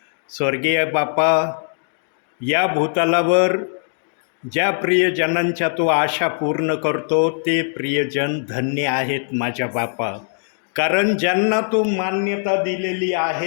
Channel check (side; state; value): right; silent; digital silence